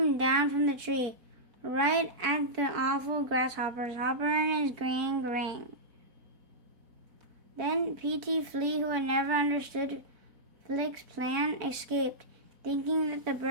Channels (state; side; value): late; left; 4.5 ms